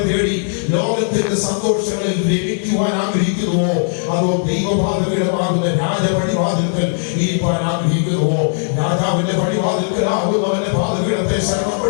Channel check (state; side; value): silent; right; digital silence